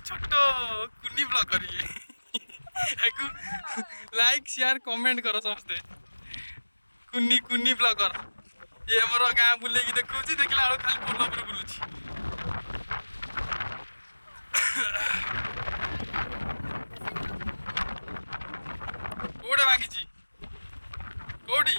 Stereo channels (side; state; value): both; inverted; correlation -1.00